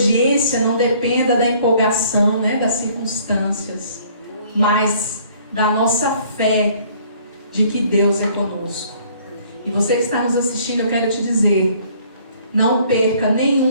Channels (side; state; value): both; inverted; correlation -0.58